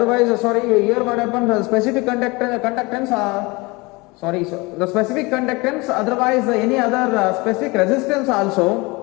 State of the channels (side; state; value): right; quieter; 24.8 dB